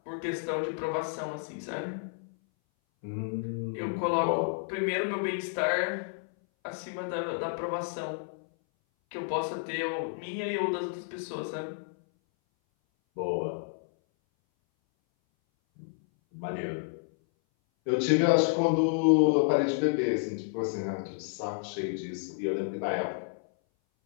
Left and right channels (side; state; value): right; silent; 57 dB below the other